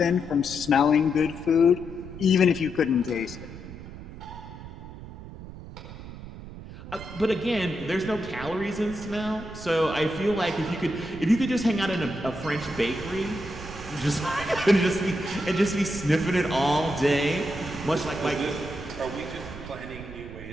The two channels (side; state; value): right; noise; rumble, 13 dB below the sound